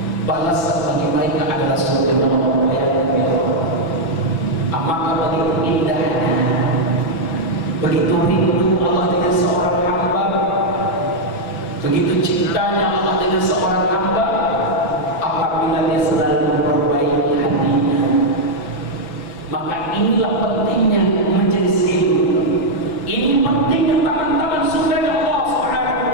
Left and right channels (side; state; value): right; late; 5.9 ms